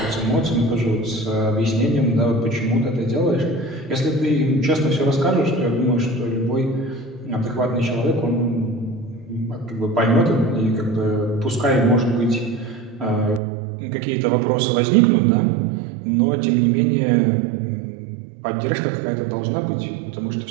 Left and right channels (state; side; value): drops out; left; at 13.4 s